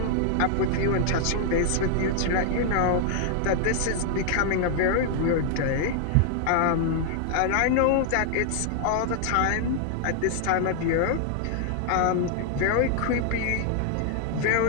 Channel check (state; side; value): different; both; correlation 0.00